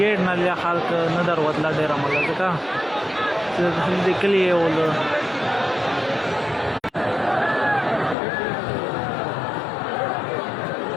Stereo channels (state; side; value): drops out; right; at 8.2 s